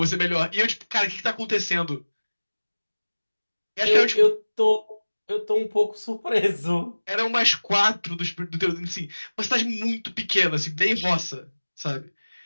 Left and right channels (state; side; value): inverted; both; correlation -1.00